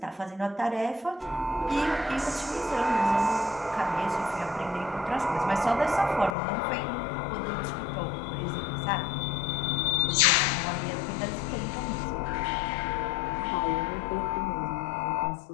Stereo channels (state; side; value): drops out; right; at 6.4 s